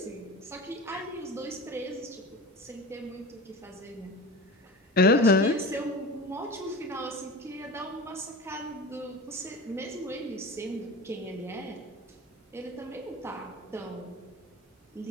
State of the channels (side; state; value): both; normal; correlation 0.33